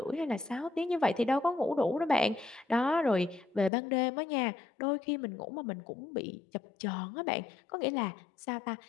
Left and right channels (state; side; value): drops out; right; at 3.7 s